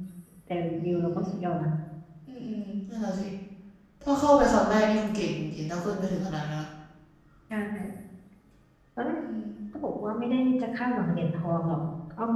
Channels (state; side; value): identical; both; correlation 1.00